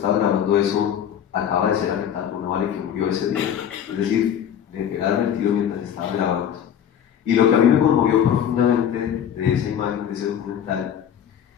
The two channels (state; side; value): quieter; right; 9.1 dB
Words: grabando eso acaba de ser alertada por una bala y que murió ese día. Es decir, le pegaron el tiro mientras estaba grabando. Y lo que a mí me conmovió profundamente de esa imagen, de ese documental,